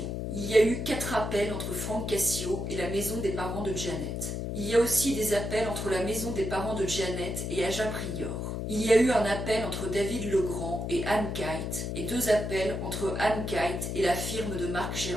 Il y a eu 4 appels entre Frank Cassio et la maison des parents de Janet. Il y a aussi des appels entre la maison des parents de Janet et Aja Prior. Il y a eu un appel entre David Legrand et Anne Kite et 2 appels entre Anne Kite et la firme de Marc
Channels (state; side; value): noise; left; hum, 3 dB below the sound